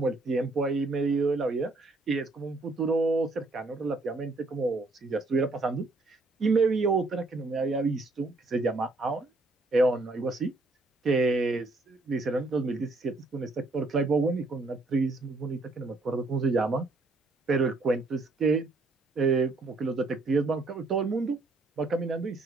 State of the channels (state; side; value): quieter; left; 3.2 dB